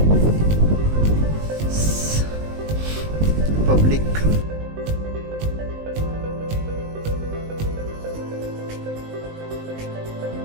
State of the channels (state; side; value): late; left; 19 ms